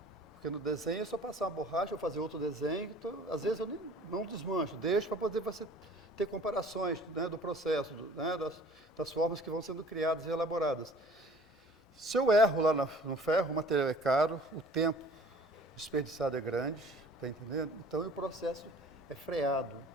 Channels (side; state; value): both; normal; correlation 0.50